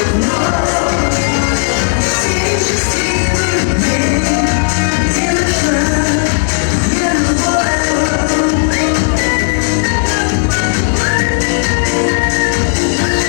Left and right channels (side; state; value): right; silent; digital silence